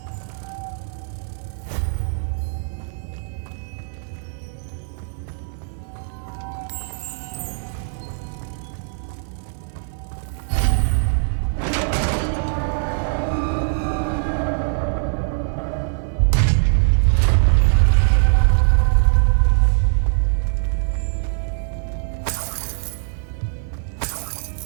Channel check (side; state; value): left; silent; 55 dB below the other